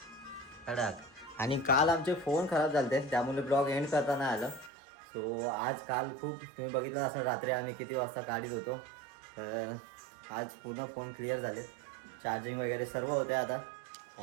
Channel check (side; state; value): left; drops out; at 4.7 s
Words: कडक. आणि काल आमचे फोन खराब झाले त्यामुळे ब्लॉग एंड करता नाही आलं. सो काल खूप तुम्ही बघितलं असं रात्री आम्ही किती वाजता काढीत होतो. तर आज पूर्ण फोन क्लिअर झाले, चार्जिंग वगैरे सर्व होते आता.